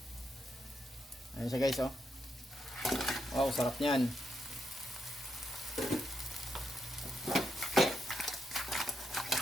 Ayan siya guys, oh. Wow, sarap niyan.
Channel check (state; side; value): normal; both; correlation 0.81